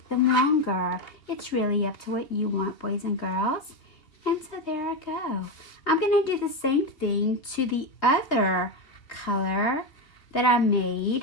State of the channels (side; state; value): right; late; 3.2 ms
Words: them longer. It's really up to what you want, boys and girls. And so there I go. I'm going to do the same thing to the other color that I